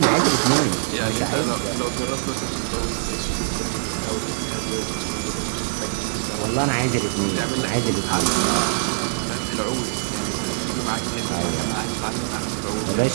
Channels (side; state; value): left; silent; digital silence